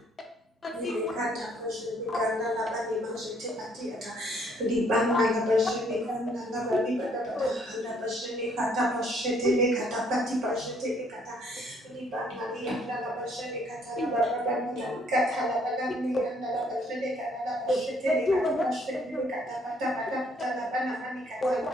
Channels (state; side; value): normal; both; correlation 0.65